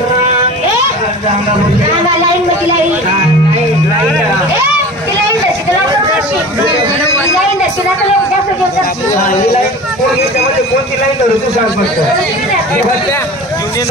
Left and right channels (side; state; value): both; normal; correlation 0.38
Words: रांगा लाईन मध्ये लाईन ए ती लाईन दर्शी तुला करशी लाईन दर्शी ना तुला जास्त दिवस करशी कोणती लाईन धरू तू सांग फक्त